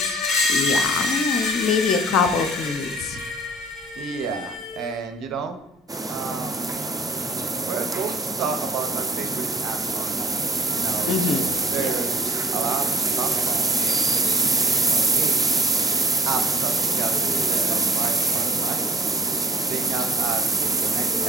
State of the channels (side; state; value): both; normal; correlation 0.44